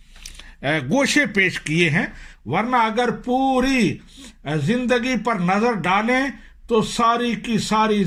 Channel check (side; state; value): both; identical; correlation 1.00